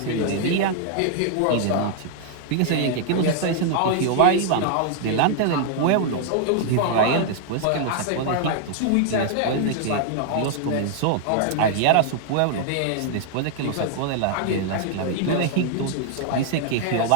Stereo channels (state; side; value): different; both; correlation -0.01